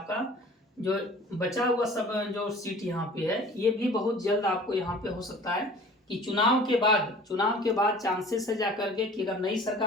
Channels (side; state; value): both; normal; correlation 0.46